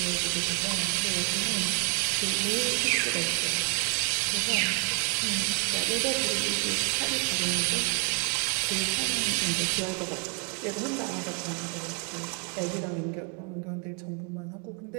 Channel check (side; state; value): left; quieter; 38.7 dB